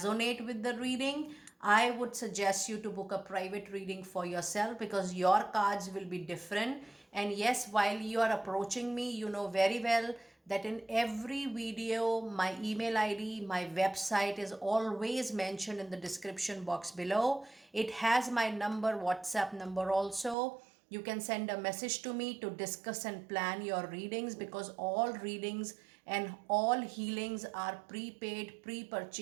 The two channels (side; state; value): left; drops out; at 20.4 s